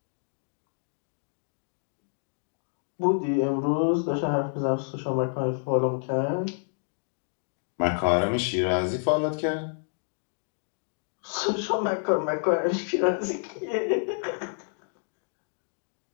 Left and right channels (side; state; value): right; silent; digital silence